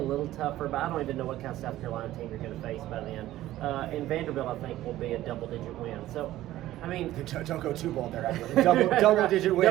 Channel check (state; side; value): quieter; left; 14.8 dB